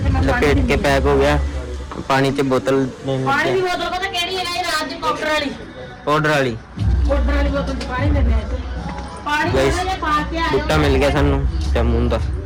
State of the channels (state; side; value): identical; both; correlation 1.00